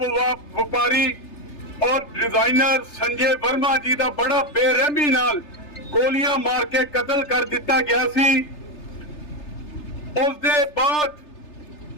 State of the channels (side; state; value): right; late; 3.3 ms